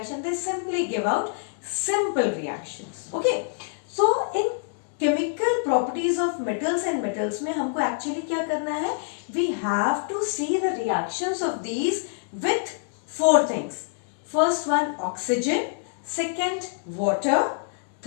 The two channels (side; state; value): right; silent; 61 dB below the other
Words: they simply give out simple reactions. Okay, so in chemical properties of metals and metals में हमको actually क्या करना है? We have to see the reactions of these with four things. First one, oxygen. Second, water.